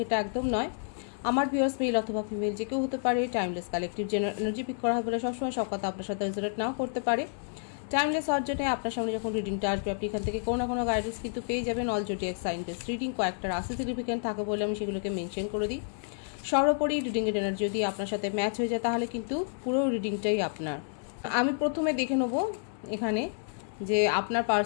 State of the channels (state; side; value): silent; right; digital silence